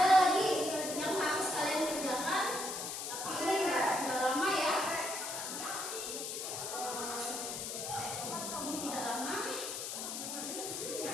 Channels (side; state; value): left; noise; hiss, 5 dB below the sound